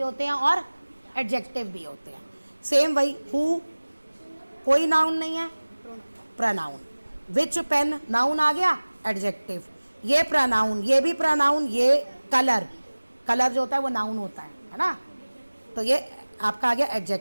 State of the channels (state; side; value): inverted; both; correlation -1.00